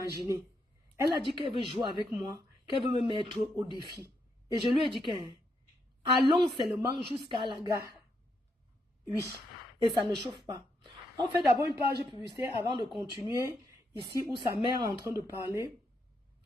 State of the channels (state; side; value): normal; both; correlation 0.79